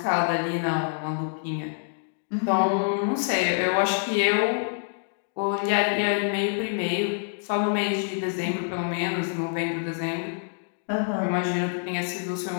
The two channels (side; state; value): right; silent; digital silence